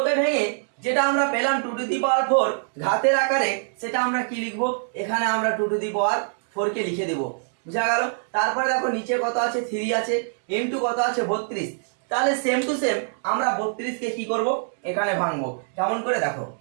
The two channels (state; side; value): silent; left; digital silence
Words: কে ভেঙে যেটা আমরা পেলাম 2⁴ ঘাতের আকারে, সেটা আমরা কি লিখবো? এখানে আমরা 2⁴ কে লিখে দেব। বুঝা গেল? তারপরে দেখো নিচে কত আছে? 3 আছে, ইনটু কত আছে? 32। তাহলে সেম টু সেম আমরা 32 কে কি করব? এখানে ভাঙবো। কেমন করে দেখো?